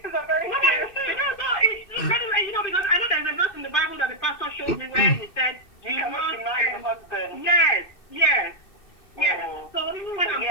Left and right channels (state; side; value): late; right; 2.6 ms